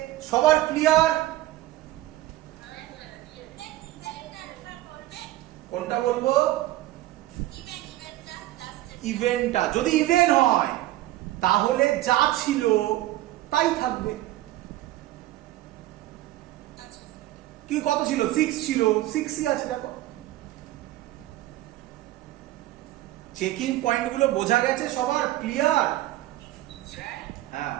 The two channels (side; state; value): left; quieter; 16.1 dB